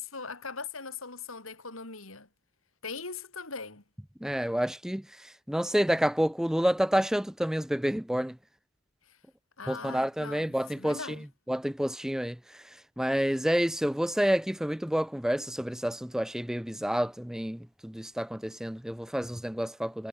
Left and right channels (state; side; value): normal; both; correlation 0.95